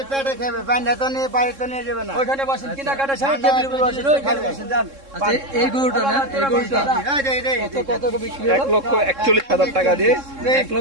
পেটে খাবে, বান্ধা তো নিয়ে বাড়ি তো নিয়ে যাবে না। ওইখানে বসেন কিনা কাটা সাহেব টেবিলের উপর বসেন, ওইখানে বসেন যান। আচ্ছা এই গরুটা না, এই গরুটা কত কত বিক্রি হলো? 1,41,000 টাকা দিয়ে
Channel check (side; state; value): left; late; 3.7 ms